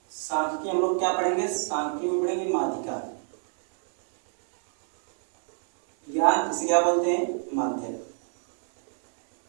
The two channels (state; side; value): silent; left; digital silence